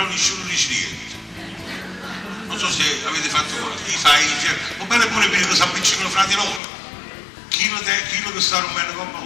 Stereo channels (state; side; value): drops out; right; at 6.6 s